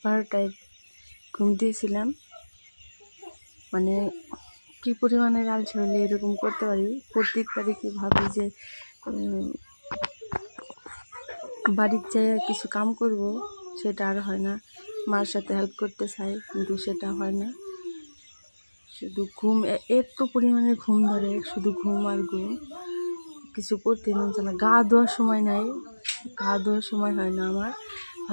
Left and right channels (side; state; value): both; inverted; correlation -1.00